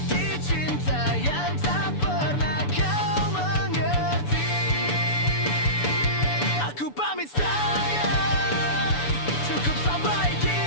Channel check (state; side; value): late; right; 6.9 ms